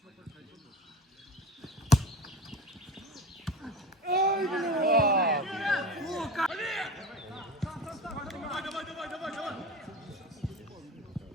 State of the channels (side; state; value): both; normal; correlation 0.32